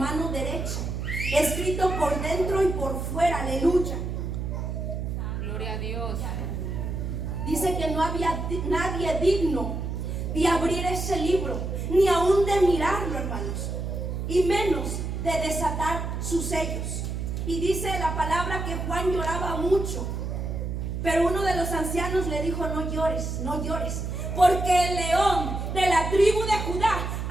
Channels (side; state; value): right; noise; hum, 3 dB below the sound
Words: derecha, escrito por dentro y por fuera, aleluya. Gloria a Dios. Dice que no había nadie digno de abrir ese libro, ni aún de mirarlo, hermanos, y menos de desatar sus sellos. Y dice la palabra que Juan lloraba mucho, pero uno de los ancianos le dijo: no llores, no llores, porque el león de la tribu de Judá